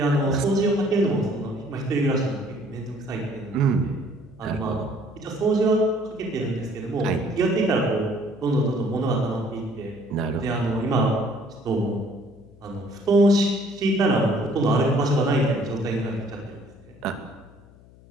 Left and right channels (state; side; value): noise; left; hum, 24 dB below the sound